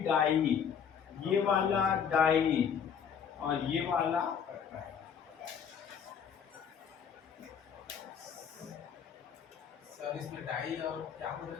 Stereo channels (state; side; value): quieter; right; 7.4 dB